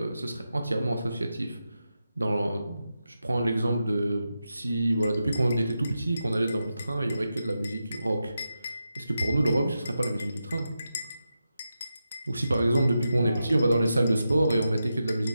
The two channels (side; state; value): both; inverted; correlation -0.88